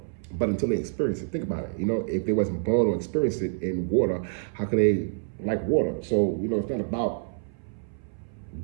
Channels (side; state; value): left; silent; 58 dB below the other